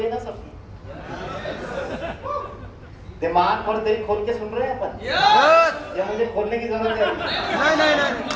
ना सबकी, दिमाग और दिल खोल के सुन रहे हैं अपन, या मुझे खोलने की जरूरत है?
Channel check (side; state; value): both; identical; correlation 1.00